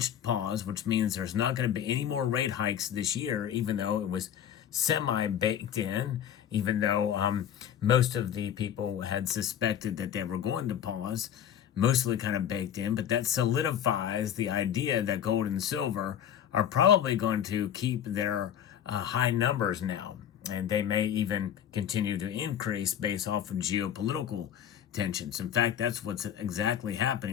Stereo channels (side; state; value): right; quieter; 9.7 dB